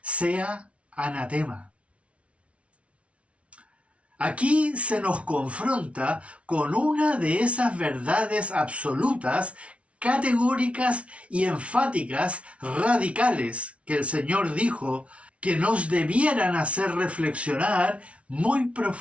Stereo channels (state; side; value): late; left; 0.062 ms